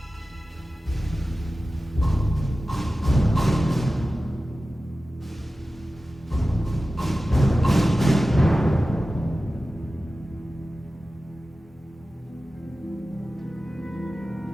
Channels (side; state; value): both; normal; correlation 0.95